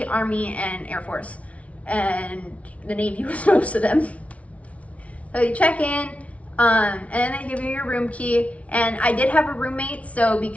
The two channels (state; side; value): late; right; 0.065 ms